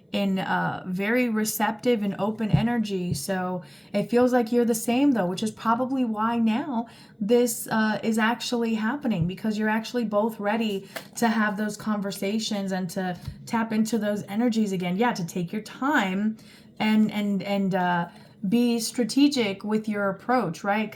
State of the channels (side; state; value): both; identical; correlation 1.00